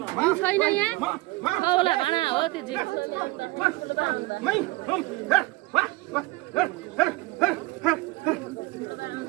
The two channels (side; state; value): left; quieter; 21.0 dB